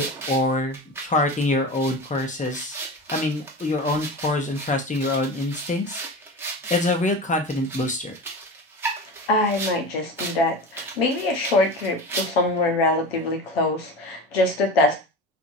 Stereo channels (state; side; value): normal; both; correlation 0.28